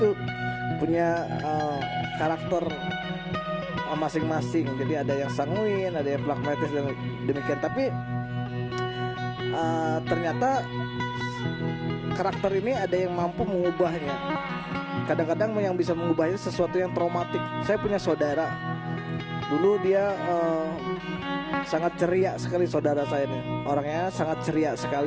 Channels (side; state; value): both; identical; correlation 1.00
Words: punya karakter masing-masing. Jadi ada yang sanguin, ada yang pragmatis dan demikian. Tapi ternyata karakter ini ada yang mampu mengubahnya. Kadang-kadang yang bisa mengubahnya sesuatu yang traumatik. Saya punya saudara. Dulu dia sangat ceria sekali, saudara saya ini. Orangnya sangat ceria